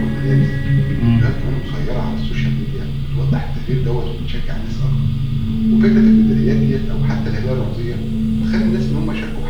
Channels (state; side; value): identical; both; correlation 1.00